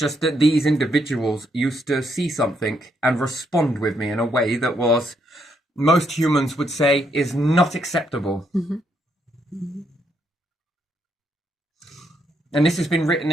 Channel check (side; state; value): both; normal; correlation 0.75